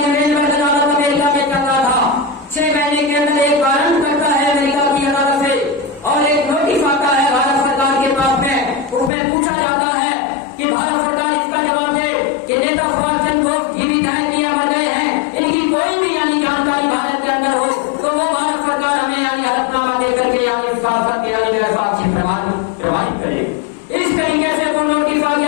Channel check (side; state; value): right; drops out; at 9.1 s